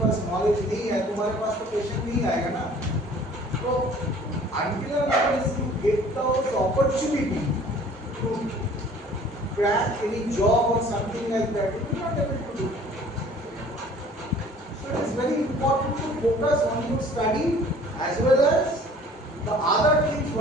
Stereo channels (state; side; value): normal; both; correlation 0.51